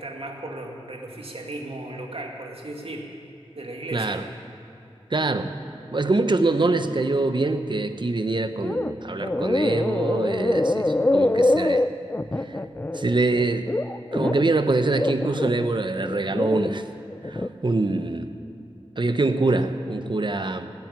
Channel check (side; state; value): both; normal; correlation 0.82